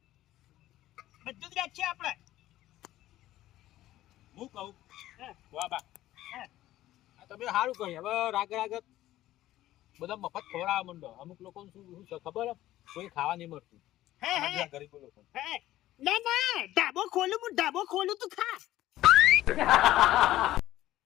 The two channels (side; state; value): right; quieter; 14.7 dB